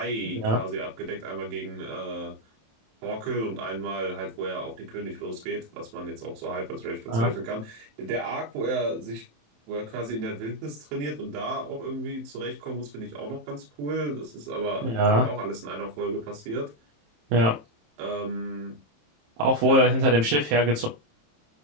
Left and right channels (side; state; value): left; late; 27 ms